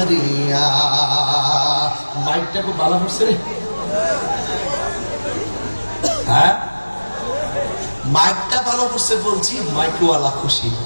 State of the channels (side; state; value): both; inverted; correlation -1.00